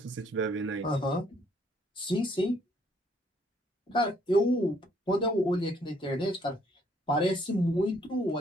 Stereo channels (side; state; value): both; normal; correlation 0.66